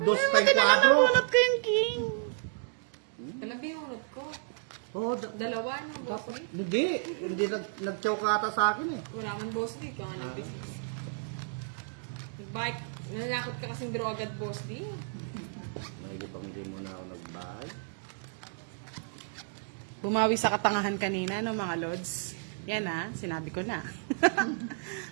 pa yung Buti na kwadro. nabunot ko yung king. Talaga yung unod ko. Oo, Dalawa na boss di. hindi nag-chow ka ata sa akin eh. Wala man boss di. Kaya nga nag-business. Nag-bike. Nanakot ka kasing draw agad boss di. Mahilig pang hindi mo na ako nag-buy. Bumawi sa katangahan kanina, no, mga lords. Yan ha, sinabi ko na.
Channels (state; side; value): silent; left; digital silence